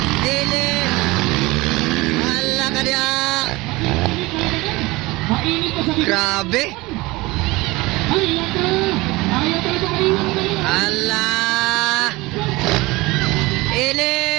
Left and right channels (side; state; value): left; quieter; 21.8 dB